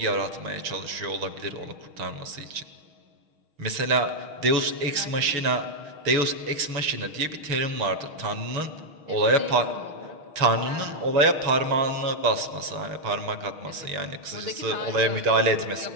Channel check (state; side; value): late; left; 6.4 ms